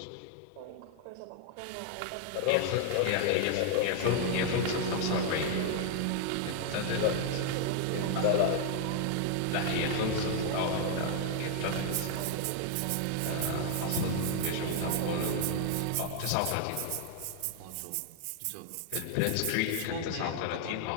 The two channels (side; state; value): both; different; correlation 0.00